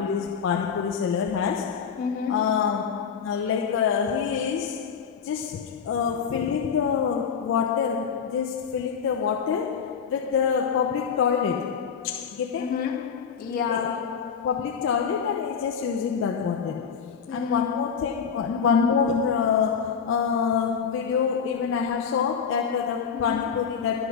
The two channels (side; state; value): right; quieter; 6.7 dB